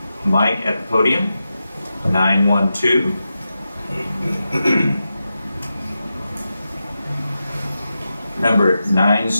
mic at the podium? 912. Number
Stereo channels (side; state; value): both; inverted; correlation -0.90